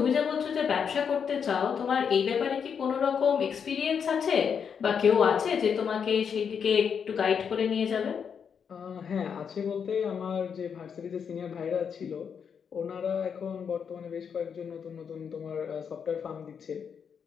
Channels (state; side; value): quieter; right; 7.0 dB